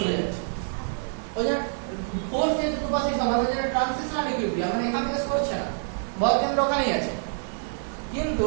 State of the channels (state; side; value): silent; left; 61 dB below the other